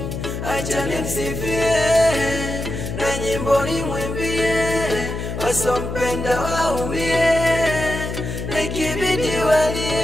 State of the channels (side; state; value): left; noise; hum, 5 dB below the sound